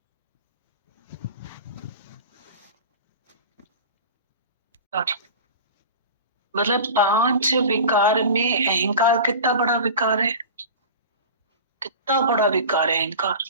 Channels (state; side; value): inverted; both; correlation -0.34